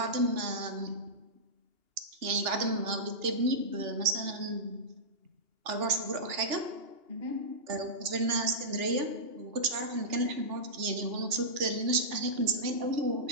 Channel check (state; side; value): late; left; 2.8 ms